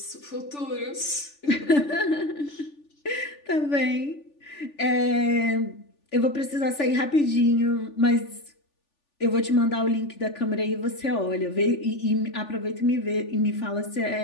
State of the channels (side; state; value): right; late; 3.4 ms